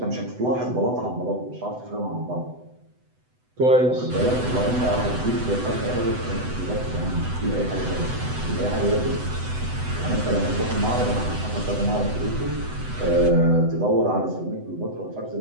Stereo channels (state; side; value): late; left; 8.0 ms